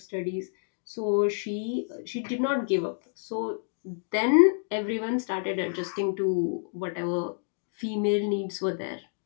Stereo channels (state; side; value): silent; right; digital silence